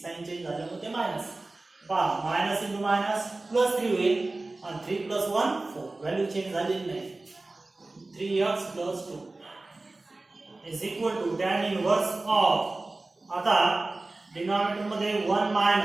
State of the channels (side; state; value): left; quieter; 3.1 dB